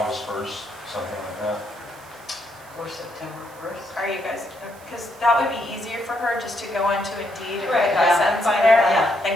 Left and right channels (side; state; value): right; noise; hiss, 24 dB below the sound